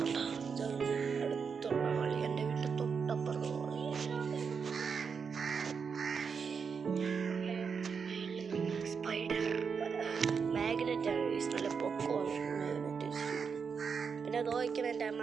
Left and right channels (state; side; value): quieter; left; 5.9 dB